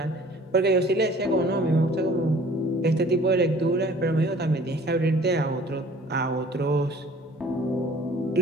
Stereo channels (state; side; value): normal; both; correlation 0.52